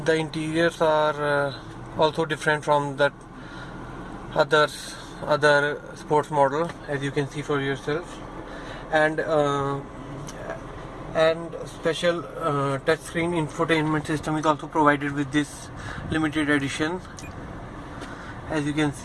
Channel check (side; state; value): both; identical; correlation 1.00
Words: interiors are also different from the other sports model, as you can see for yourself. And special touchscreen infotainment system is also provided with this limited edition, as you can